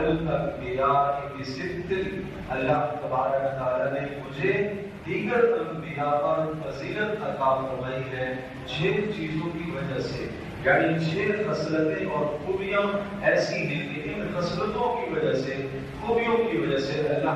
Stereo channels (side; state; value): both; identical; correlation 1.00